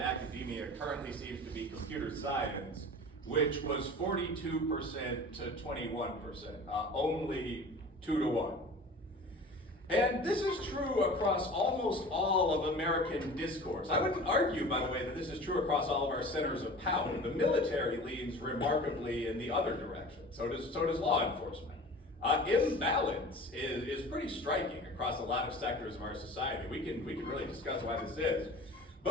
currently seems to be computer science, which was 42% to 21%, only 2 to 1. And this is true across almost all of American discourse. I wouldn't argue, by the way, that this is true across all of our centers of power. The military leans remarkably in the other direction. So does law enforcement. Imbalance is pretty striking across a lot of sectors of our society. We can really discuss why this is.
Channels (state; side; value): normal; both; correlation 0.40